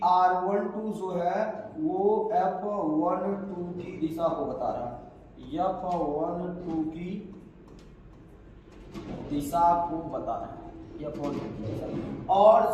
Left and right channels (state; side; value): identical; both; correlation 1.00